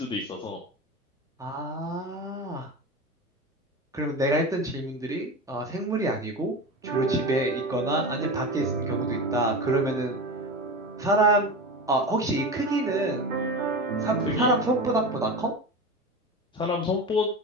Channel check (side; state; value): both; normal; correlation 0.26